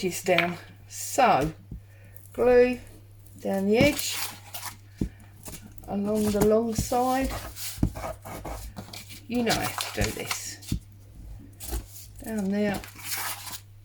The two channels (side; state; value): both; identical; correlation 1.00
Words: down. So glue down the edge along the long side. You know how to do this. Down there.